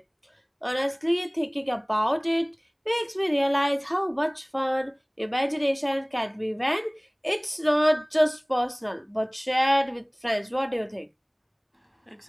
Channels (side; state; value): both; identical; correlation 1.00